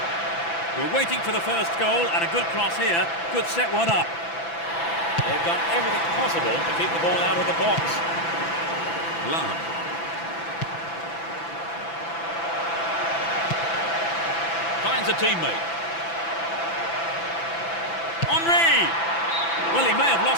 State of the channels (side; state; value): right; late; 6.0 ms